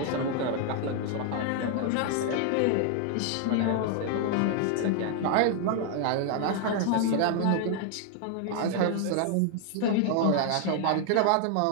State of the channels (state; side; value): different; both; correlation 0.00